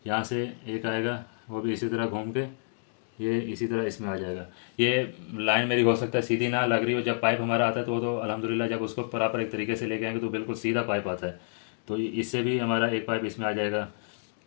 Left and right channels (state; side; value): silent; right; digital silence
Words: यहाँ से एक आएगा, वो भी इसी तरह घूम के ये इसी तरह इसमें आ जाएगा। ये लाइन मेरी हो सकता है सीधी ना लग रही हो, जब पाइप हमारा आता है तो अल्हम्दुलिल्लाह जब उसको प्रॉपर एक तरीके से लेके आएंगे तो बिल्कुल सीधा पाइप आता है, तो इससे भी हमारा एक पाइप इसमें आ जाएगा।